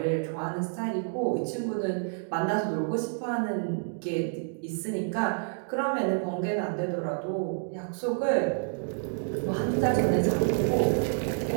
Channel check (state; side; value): silent; left; digital silence